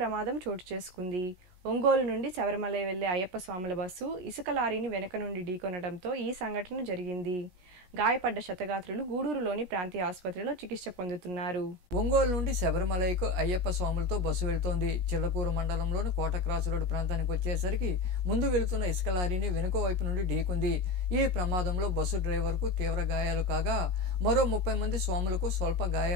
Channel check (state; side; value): late; left; 17 ms